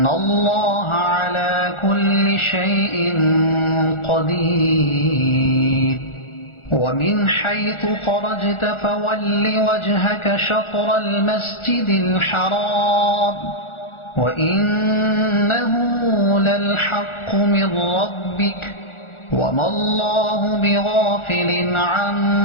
الله على كل شيء قدير ومن حيث خرجت فول وجهك شطر المسجد الحرام وإنه للحق من ربك وما الله بغافل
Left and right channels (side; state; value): right; late; 1.4 ms